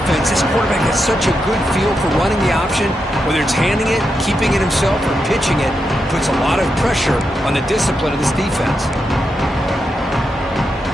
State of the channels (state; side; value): normal; both; correlation 0.85